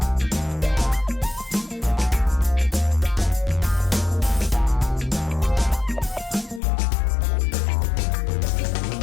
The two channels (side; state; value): right; drops out; at 6.6 s